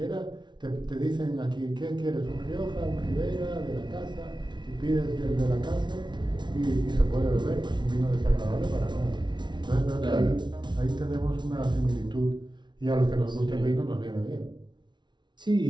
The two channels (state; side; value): late; left; 0.22 ms